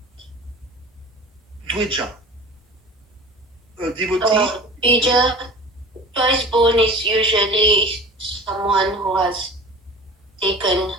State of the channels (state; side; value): normal; both; correlation 0.38